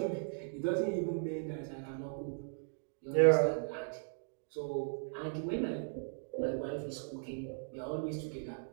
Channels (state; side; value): silent; left; digital silence